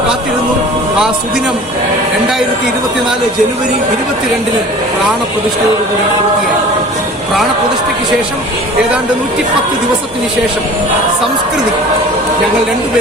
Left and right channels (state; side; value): normal; both; correlation 0.43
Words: കാത്തിരുന്നു. ആ സുദിനം 2024 ജനുവരി 22 പ്രാണപ്രതിഷ്ഠയോടുകൂടി പൂർത്തിയായി. പ്രാണപ്രതിഷ്ഠയ്ക്ക് ശേഷം ഏതാണ്ട് 110 ദിവസത്തിന് ശേഷം സംസ്കൃതി ഞങ്ങൾ